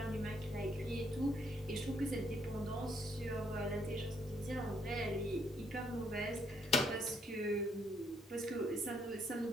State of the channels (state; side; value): normal; both; correlation 0.71